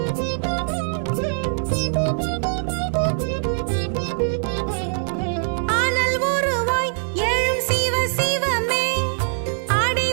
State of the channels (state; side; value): silent; left; 64 dB below the other